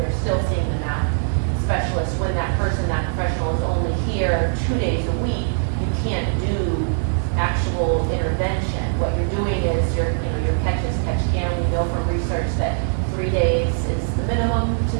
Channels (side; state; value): left; silent; digital silence